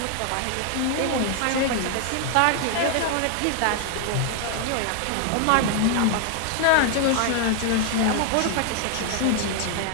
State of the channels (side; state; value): both; different; correlation 0.00